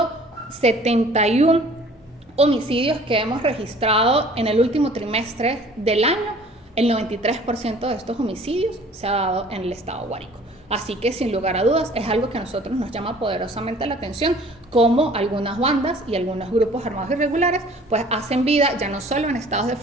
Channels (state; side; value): normal; both; correlation 0.51